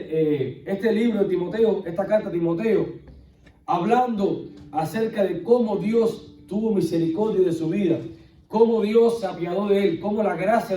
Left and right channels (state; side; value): identical; both; correlation 1.00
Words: libro de Timoteo, esta carta a Timoteo, hablando acerca de cómo Dios tuvo misericordia de su vida, cómo Dios se apiadó de él, cómo la gracia